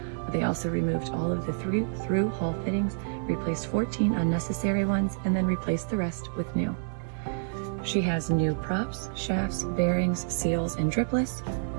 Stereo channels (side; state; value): left; silent; digital silence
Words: They also removed all of the through hull fittings, replaced 14 unnecessary ones, and then replaced the rest with new. She has new props, shafts, bearings, seals, and dripless.